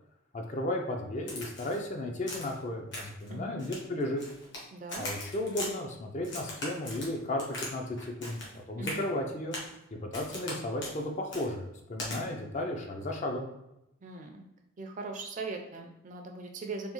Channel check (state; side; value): normal; both; correlation 0.27